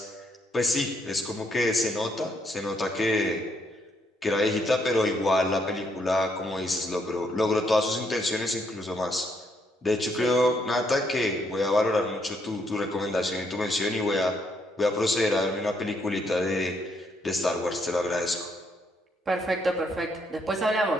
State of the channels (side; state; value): both; normal; correlation 0.73